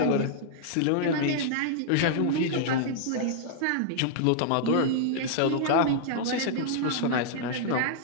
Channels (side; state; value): both; different; correlation -0.01